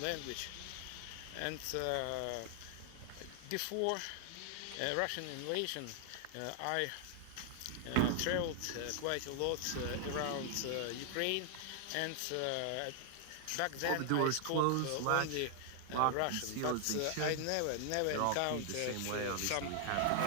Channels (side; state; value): both; different; correlation 0.00